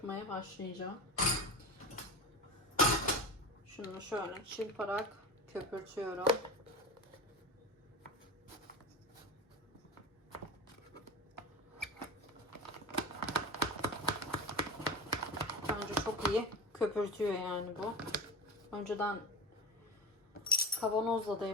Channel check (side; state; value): both; normal; correlation 0.26